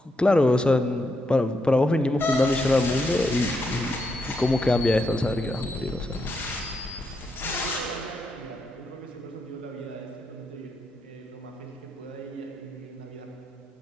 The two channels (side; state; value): both; normal; correlation 0.81